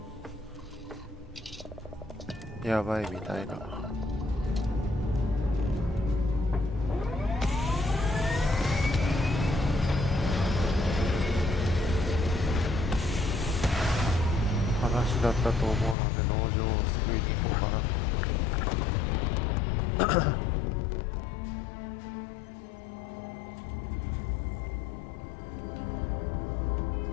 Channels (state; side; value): drops out; right; at 16.0 s